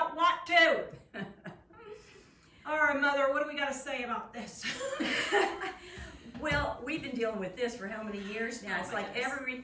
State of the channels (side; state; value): both; identical; correlation 1.00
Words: want to. All right, Mother, what do we got to say about this? Well, we've been dealing with this for how many years now? It's like every